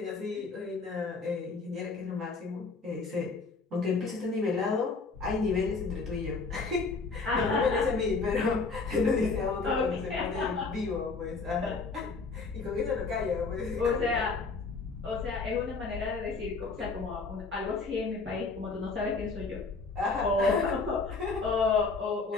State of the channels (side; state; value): right; quieter; 4.2 dB